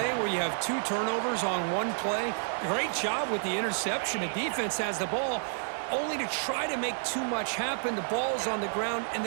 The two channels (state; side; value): silent; left; digital silence